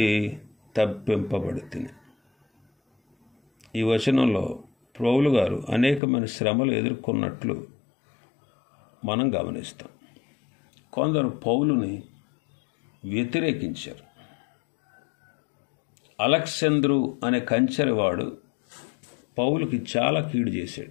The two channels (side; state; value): right; drops out; at 6.0 s